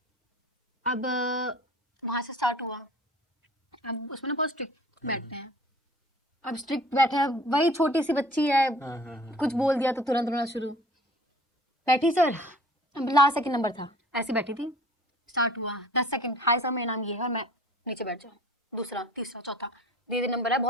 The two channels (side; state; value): both; normal; correlation 0.48